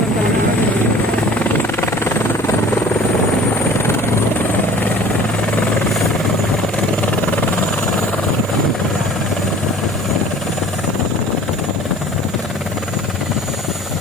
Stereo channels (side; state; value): both; normal; correlation 0.46